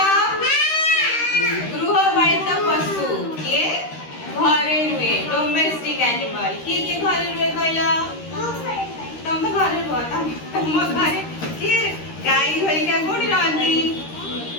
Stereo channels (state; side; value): late; right; 13 ms